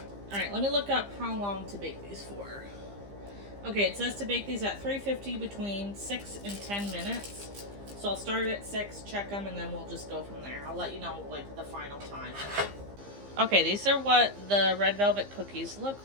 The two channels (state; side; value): late; left; 15 ms